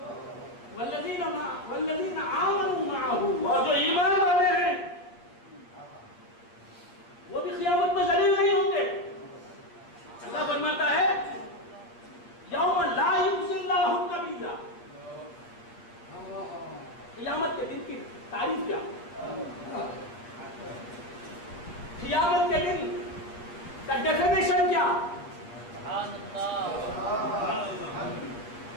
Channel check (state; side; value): late; right; 8.7 ms